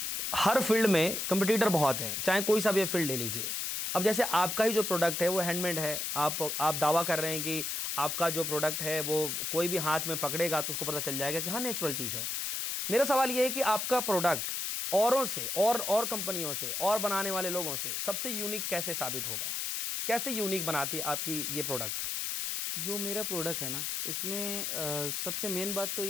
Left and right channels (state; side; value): noise; left; hiss, 2 dB below the sound